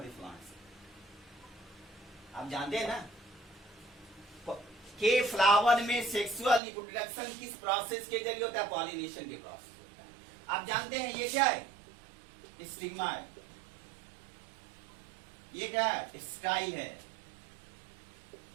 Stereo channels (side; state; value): left; drops out; at 6.6 s